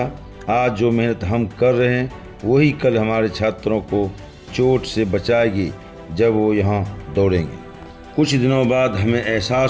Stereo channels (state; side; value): identical; both; correlation 1.00